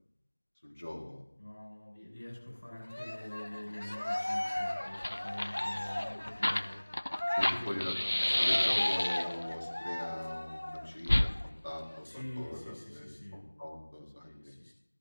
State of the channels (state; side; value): inverted; both; correlation -1.00